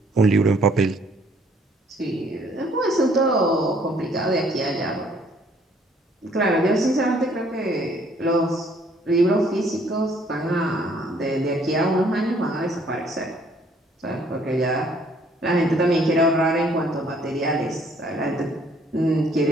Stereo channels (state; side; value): normal; both; correlation 0.62